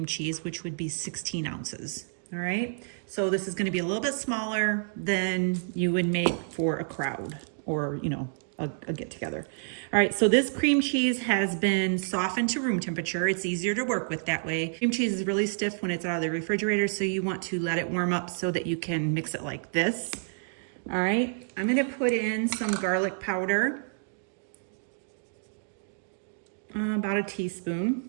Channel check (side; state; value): left; silent; digital silence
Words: cheese, which would be 16 ounces. All right. So this is going to be a little bit smaller than you would make for a crowd or, you know, a get together. All right. So this cream cheese has been softened to room temperature. It's easier to work with that way. Cream cheese is really stiff when it's out of the refrigerator. So you want to let it warm up so that you can mix it like this. All right. I'm going to put in some garlic powder, about a teaspoon.